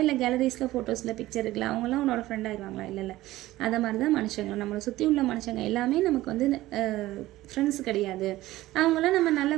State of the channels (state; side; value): quieter; left; 16.6 dB